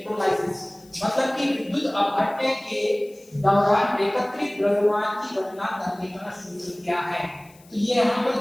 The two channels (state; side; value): noise; left; hiss, 27 dB below the sound